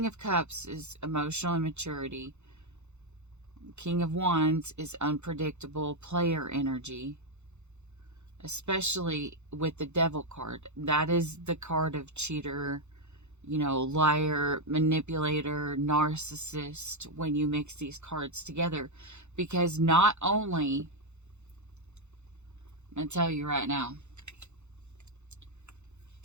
of Cups is emotional immaturity. King of Wands is unpredictable player energy. Especially with the Devil card. That is the card of cheater, liar, manipulator, narcissist, when you mix these cards together. Because not only, I'm going to tell you right now,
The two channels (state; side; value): late; left; 0.82 ms